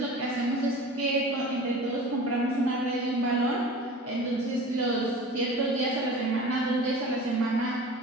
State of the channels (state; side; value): normal; both; correlation 0.38